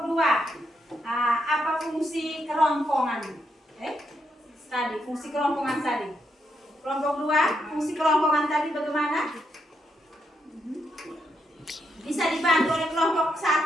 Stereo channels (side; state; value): both; normal; correlation 0.80